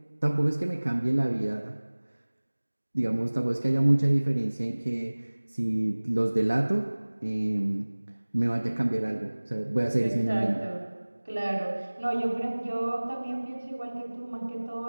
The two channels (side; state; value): both; inverted; correlation -1.00